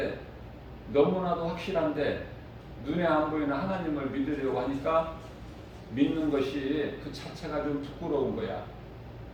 너무나도 확실한데 눈에 안 보이는 하나님을 믿으려고 하니까 믿는 것이 그 자체가 좀 부끄러운 거야.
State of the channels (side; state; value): both; identical; correlation 1.00